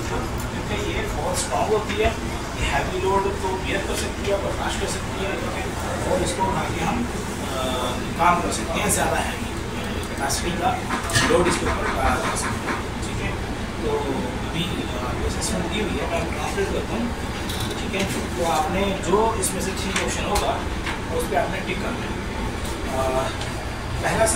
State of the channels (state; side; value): identical; both; correlation 1.00